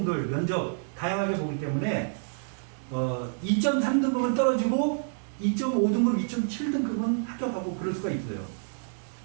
면접 다양하게 보기 때문에 2.3등급은 떨어지고 2.5등급, 2.7등급은 합격하고 그럴 수가 있어요.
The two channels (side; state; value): left; silent; digital silence